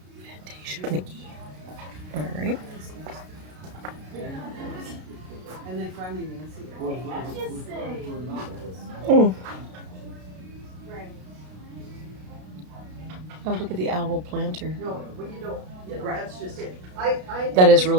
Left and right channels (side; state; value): left; late; 33 ms